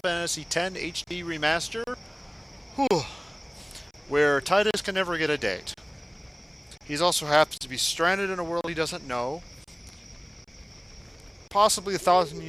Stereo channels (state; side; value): identical; both; correlation 1.00